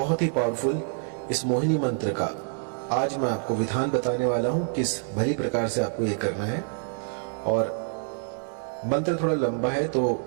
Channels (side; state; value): left; silent; 60 dB below the other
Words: ही पावरफुल इस मोहिनी मंत्र का आज मैं आपको विधान बताने वाला हूं, किस भली प्रकार से आपको ये करना है। और मंत्र थोड़ा लंबा है तो